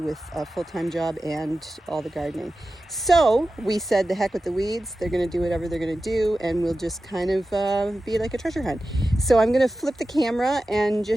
a full-time job and all the gardening. So we said, the heck with the weeds, they're going to do whatever they're going to do, and we'll just kind of be like a treasure hunt. So I'm going to flip the camera and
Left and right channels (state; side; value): normal; both; correlation 0.94